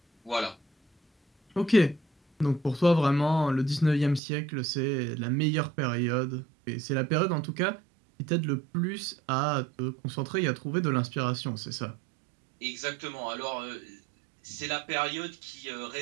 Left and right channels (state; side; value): drops out; left; at 4.2 s